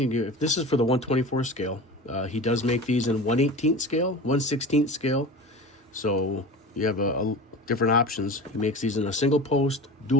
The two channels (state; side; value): normal; both; correlation 0.33